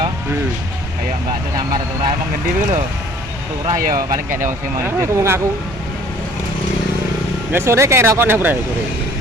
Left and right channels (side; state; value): both; normal; correlation 0.53